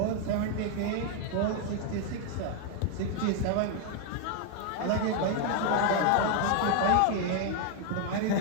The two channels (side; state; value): both; different; correlation 0.00